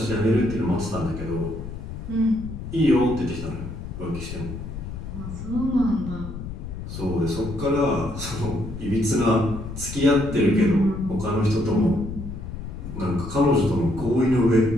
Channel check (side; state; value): left; noise; rumble, 9 dB below the sound